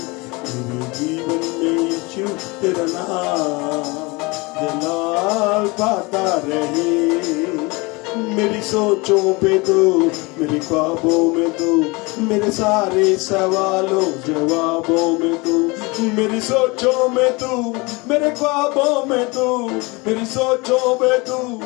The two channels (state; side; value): quieter; right; 25.7 dB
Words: मेरे जीवन में यीशु तेरा नाम जलाल पाता रहे। मेरी सोचों पे तो मेरे ख्वाबों में तो मेरे सारे सवालों जवाबों में तो मेरी सोचों में तू मेरे ख्वाबों में तू मेरी सोचों में तू